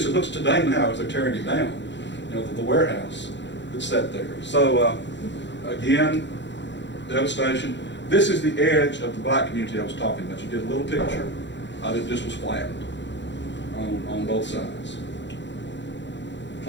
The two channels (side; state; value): right; late; 0.52 ms